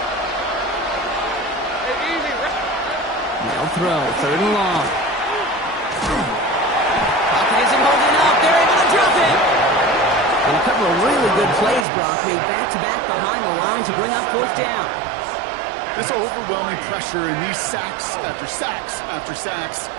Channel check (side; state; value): left; drops out; at 11.9 s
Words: Hey, easy. They'll throw, 3rd and long. Pocket isn't holding up. They're able to drop it. And a couple of really good plays, Brock, made back-to-back behind the line to bring up 4th down. This overwhelming pressure and these sacks after sacks after sacks,